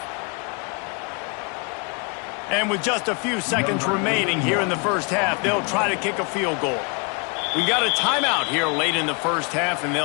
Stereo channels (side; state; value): right; quieter; 33.1 dB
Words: And with just a few seconds remaining here in the first half, they'll try to kick a field goal. We got a timeout here late in the first half, and